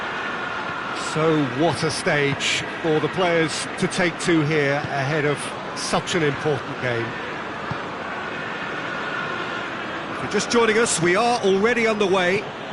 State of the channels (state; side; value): identical; both; correlation 1.00